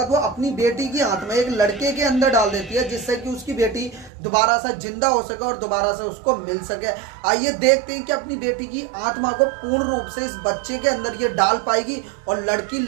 वो अपनी बेटी की आत्मा एक लड़के के अंदर डाल देती है, जिससे कि उसकी बेटी दोबारा से जिंदा हो सके और दोबारा से उसको मिल सके। आइए देखते हैं कि अपनी बेटी की आत्मा को पूर्ण रूप से इस बच्चे के अंदर ये डाल पाएगी और लड़की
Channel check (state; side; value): drops out; left; at 4.1 s